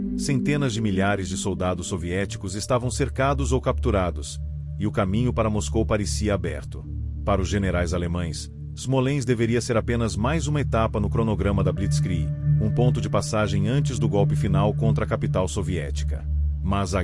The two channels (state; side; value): identical; both; correlation 1.00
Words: centenas de milhares de soldados soviéticos estavam cercados ou capturados, e o caminho para Moscou parecia aberto. Para os generais alemães, Smolensk deveria ser apenas mais uma etapa no cronograma da Blitzkrieg, um ponto de passagem antes do golpe final contra a capital soviética. Mas a